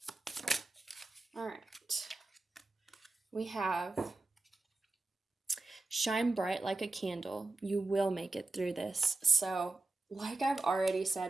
All right. We have shine bright like a candle. You will make it through this. So, like I've already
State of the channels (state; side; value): quieter; left; 3.1 dB